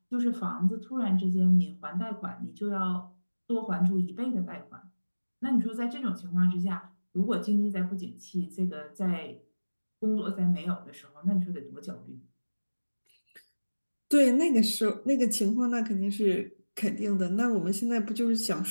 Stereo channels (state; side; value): inverted; both; correlation -1.00